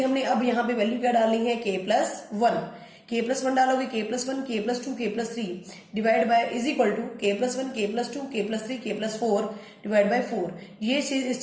हमने अब यहाँ पे वैल्यू क्या डालनी है, k plus 1। k plus 1 डालोगे, k plus 1 k plus 2 k plus 3 divide by is equal to k plus 1 k plus 2 k plus 3 k plus 4 divide by 4। ये चीज इस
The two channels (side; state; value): both; identical; correlation 1.00